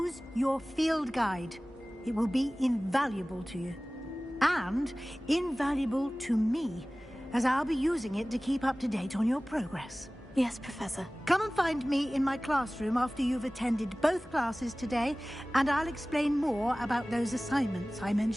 your field guide. It will be invaluable to you. And invaluable to me, as I'll be using it to keep up to date on your progress. Yes, Professor. Come and find me in my classroom after you've attended both classes today, and I'll explain more about those assignments I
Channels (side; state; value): both; normal; correlation 0.98